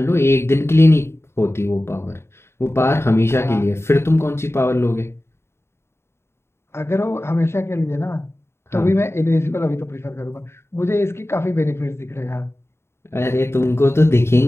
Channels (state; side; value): late; right; 0.12 ms